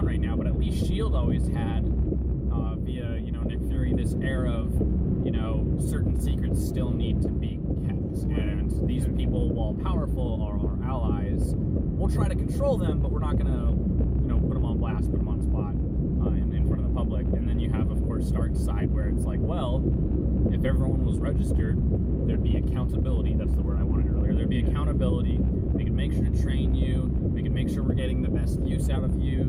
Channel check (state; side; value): identical; both; correlation 1.00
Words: right now. But at least S.H.I.E.L.D. always had, via Nick Fury, this air of certain secrets still need to be kept, and these people, while powerful, are our allies. We'll try to control them, but we're not gonna put them on blast, put them on spot in front of the public. And then you have, of course, Stark's side, where it's like, well, if everyone was registered, there'd be accountability. That's the word I wanted earlier. There'd be accountability. We could make sure to train you. We could make sure we're getting the best use out of